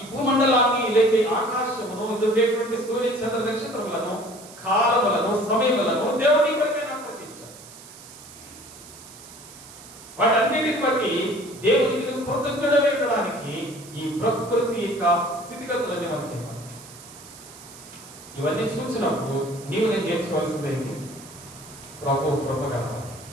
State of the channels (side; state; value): right; noise; hiss, 18 dB below the sound